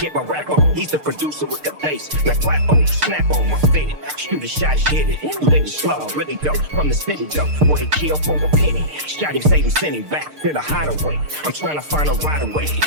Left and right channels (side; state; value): left; late; 6.6 ms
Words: my rap on. He's the producer with the bass. Now clap on, snap on my fitted. Shoot a shot, hit it. Live it slow, really dope. From the city though. Boy, he killed for a penny. Shot him, saved him, sent him back to the hideaway. I'm trying to find a right away.